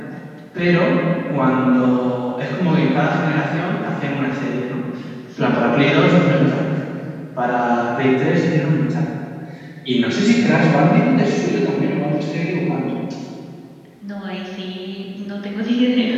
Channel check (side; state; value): both; identical; correlation 1.00